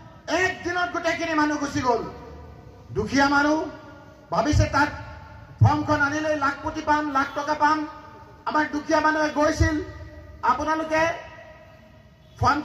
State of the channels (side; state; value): both; identical; correlation 1.00